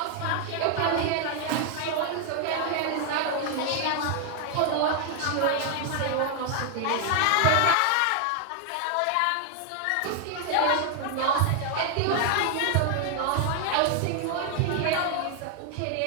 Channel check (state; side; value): different; both; correlation 0.00